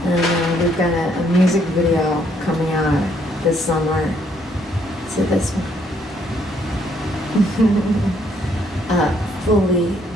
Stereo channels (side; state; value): both; normal; correlation 0.69